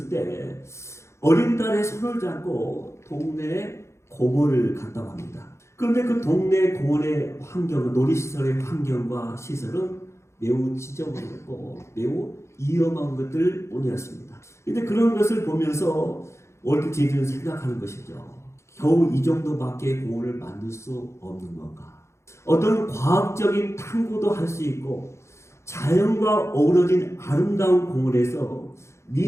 때 어린 딸의 손을 잡고 동네에 공원을 갔다고 합니다. 그런데 그 동네 공원의 환경은, 놀이시설의 환경과 시설은 매우 지저분했고 매우 위험한 것들 뿐이었습니다. 근데 그런 것을 보면서 월트 디즈니는 생각하는 것이죠. 겨우 이 정도밖에 공원을 만들 수 없는 건가? 어떤 과학적인 탐구도 할 수 있고 자연과 어우러진 아름다운 공원에서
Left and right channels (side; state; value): right; late; 0.13 ms